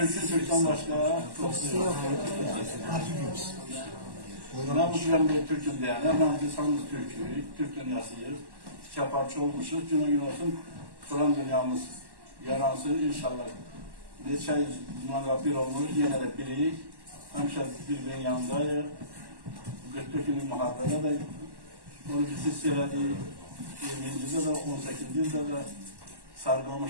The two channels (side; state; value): left; late; 1.1 ms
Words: başka çok yok. Ben bu dönem bir Türk'üm diyen, ben insanımız Türk dünyasıyız. Çaparçı olmuşuz. Günü gün olsun Kur'an dünyamız yaransın inşallah. Neçə yüz bir olmuş, yine de birik. Həmişə birbirinin yanındayıq. 44 günlük müharibədə də onu biz hiss elədik. 20-ci də 18-ci də